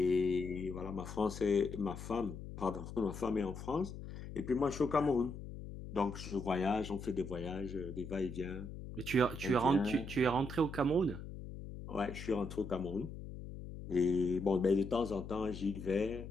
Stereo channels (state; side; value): noise; left; hum, 10 dB below the sound